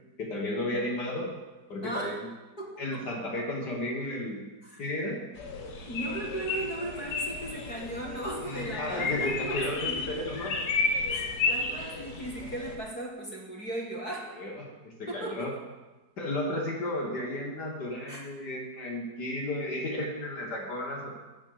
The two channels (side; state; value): right; late; 4.7 ms